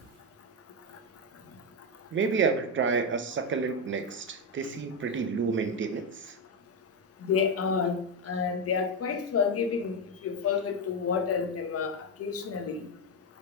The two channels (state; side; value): normal; both; correlation 0.07